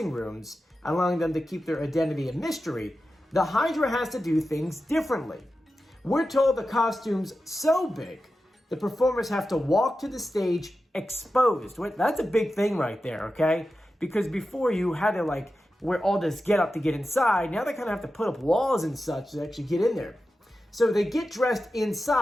rooms, allowing them to keep their identity a mystery, the Hydra has to do things differently. We're told the costume's so big, the performers have to walk to the stage exposed. That's a big thing right there, okay? Because before you had to wear all this getup to get inside, now they kind of have to put up walls and such to actually get in there. So they get dressed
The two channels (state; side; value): normal; both; correlation 0.92